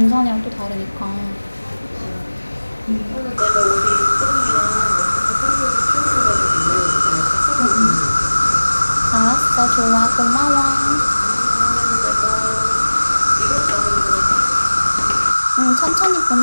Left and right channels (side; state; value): both; inverted; correlation -1.00